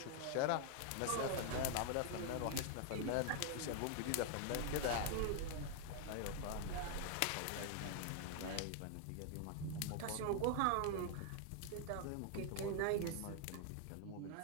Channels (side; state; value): both; different; correlation 0.00